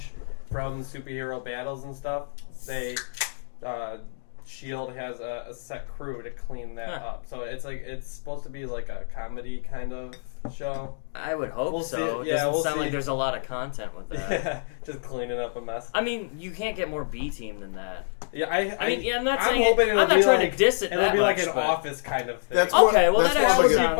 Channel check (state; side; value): silent; right; digital silence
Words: from superhero battles and stuff. They Shield has a set crew to clean that up. So it's supposed to be like a comedy kind of show. I would hope We'll so. see. It doesn't We'll sound see. like there's a lot of content with that. Yeah, just cleaning up a mess. I mean, you can't get more B team than that. Yeah, I mean, yeah, I'm not I'm saying hoping I'm it'll not be trying like, to diss it It'll that be like much, an but- Office kind of thing. That's Okay, well that's that more actually That would